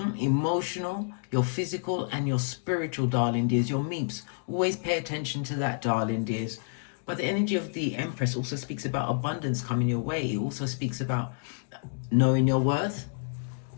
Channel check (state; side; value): silent; right; digital silence